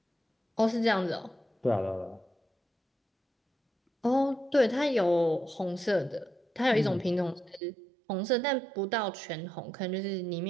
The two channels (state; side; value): drops out; left; at 7.6 s